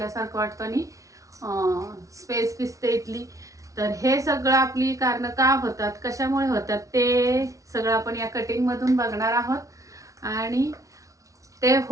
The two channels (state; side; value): late; left; 0.16 ms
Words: वाटतं आणि स्पेस दिसते इथली। तर हे सगळं आपली कारण का होतात, कशामुळे होतात ते सगळं आपण या कटिंग मधून बघणार आहोत आणि ते